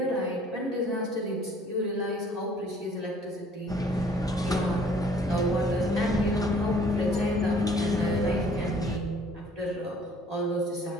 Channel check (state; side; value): normal; both; correlation 0.56